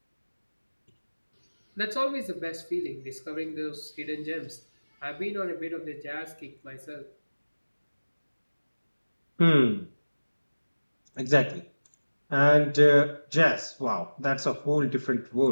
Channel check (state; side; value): inverted; both; correlation -1.00